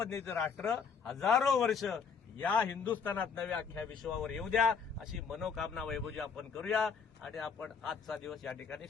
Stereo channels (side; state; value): right; quieter; 6.0 dB